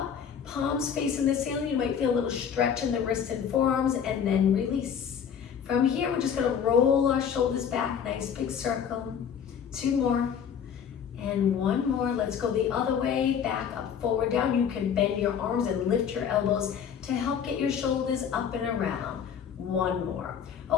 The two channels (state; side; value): quieter; right; 7.8 dB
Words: palms facing the ceiling. You might feel a little stretch in the wrists and forearms, and then release. From here, we're just gonna roll our shoulders back, nice big circle. Two more. And one more. Let's go the other way, back up, forward, down. You can bend your arms and lift your elbows to help get your shoulders up and around. One more.